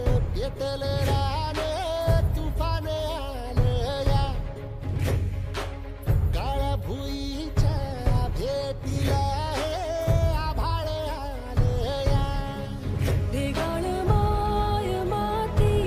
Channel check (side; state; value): both; identical; correlation 1.00